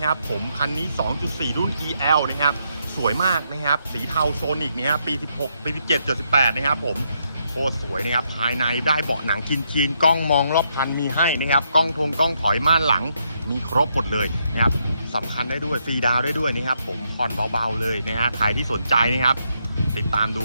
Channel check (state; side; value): inverted; both; correlation -0.77